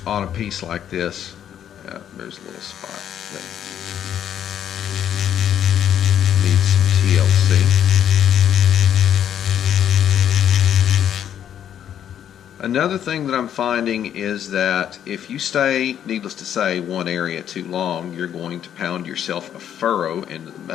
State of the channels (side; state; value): right; quieter; 9.8 dB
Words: on a piece like this. Yeah, there's a little spot that needs some TLC. Another thing that I'm finding is that if you stay, needless to say, one area too long, you're going to pound yourself a furrow into the